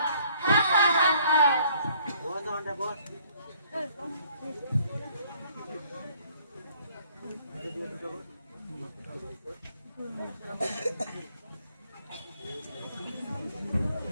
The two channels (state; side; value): inverted; both; correlation -0.61